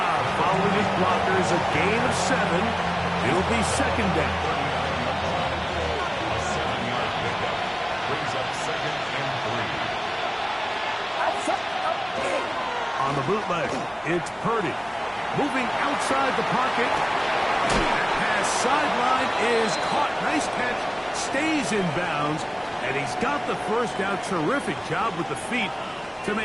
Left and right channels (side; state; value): both; identical; correlation 1.00